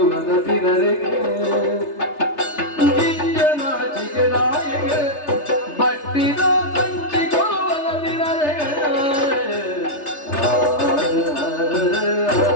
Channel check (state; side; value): late; right; 3.3 ms